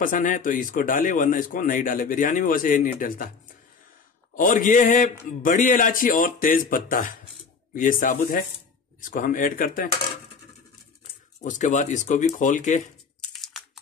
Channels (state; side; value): quieter; right; 5.2 dB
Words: है तो इसको डाले, वरना इसको नहीं डाले। बिरयानी में वैसे नहीं डलता। और ये है बड़ी इलायची और तेज पत्ता, ये साबुत है, इसको हम ऐड करते हैं। उसके बाद इसको भी खोल के